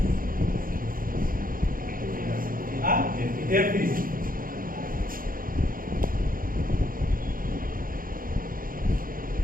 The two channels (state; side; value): late; left; 0.41 ms